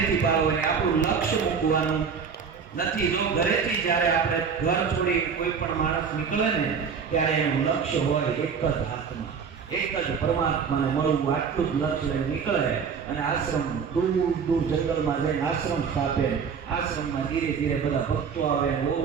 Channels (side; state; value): left; quieter; 6.3 dB